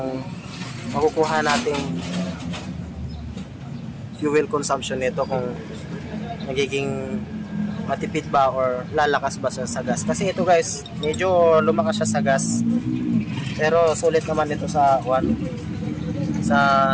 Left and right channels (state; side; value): identical; both; correlation 1.00